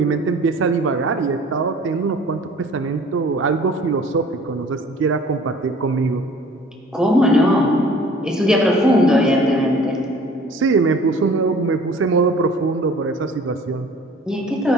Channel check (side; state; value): both; normal; correlation 0.49